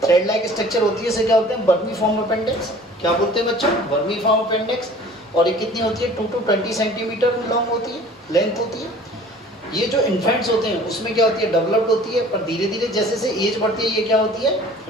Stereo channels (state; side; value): normal; both; correlation 0.48